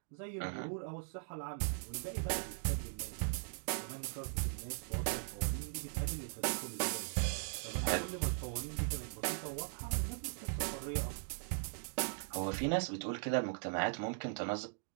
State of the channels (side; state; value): left; silent; digital silence